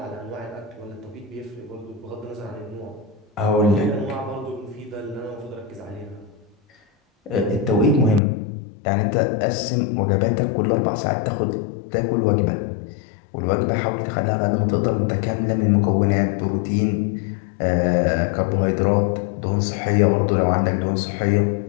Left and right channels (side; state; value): right; drops out; at 8.2 s